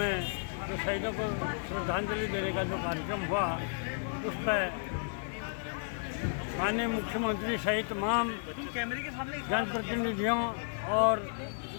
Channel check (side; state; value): right; silent; 56 dB below the other